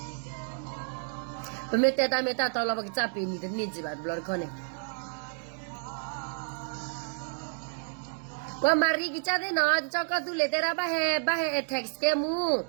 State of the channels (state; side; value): silent; left; digital silence